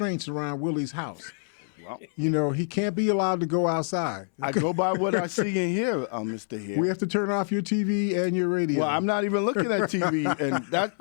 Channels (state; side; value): silent; right; 61 dB below the other